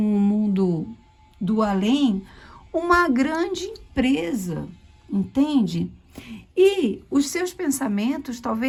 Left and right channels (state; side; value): identical; both; correlation 1.00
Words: mundo do além uma grande empresa, entende? E os seus pensamentos